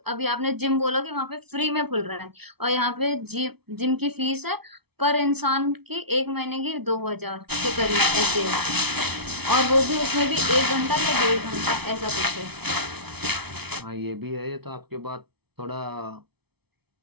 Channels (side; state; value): left; late; 0.98 ms